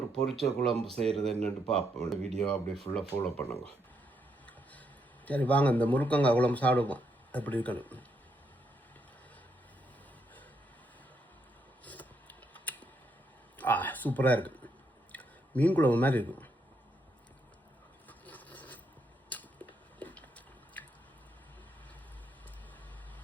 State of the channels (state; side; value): normal; both; correlation 0.77